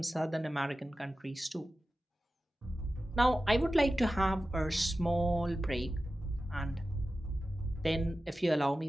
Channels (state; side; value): normal; both; correlation 0.94